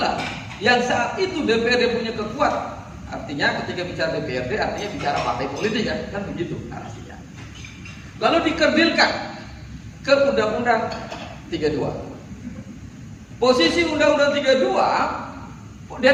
yang saat itu DPRD punya kekuatan. Artinya ketika bicara DPRD artinya bicara partai politik kan begitu artinya. Lalu dikerdilkan ke Undang-Undang 32. Posisi Undang-Undang 32,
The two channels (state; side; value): identical; both; correlation 1.00